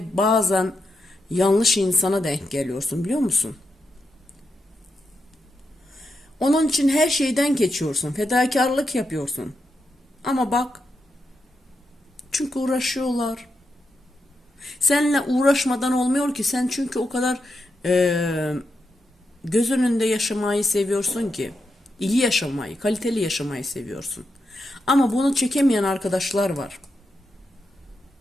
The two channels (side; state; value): both; normal; correlation 0.85